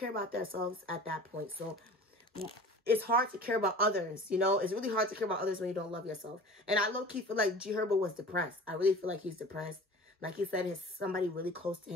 about themselves at that point. So it's hard to care about others, you know? It's really hard to care about others when you don't love yourself. And I low-key feel like G Herbo was depressed. I really feel like he's depressed. Like he said, somebody really close to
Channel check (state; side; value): normal; both; correlation 0.41